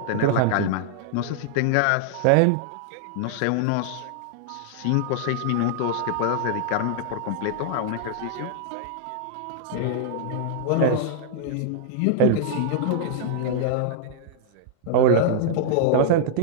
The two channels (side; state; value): both; different; correlation -0.01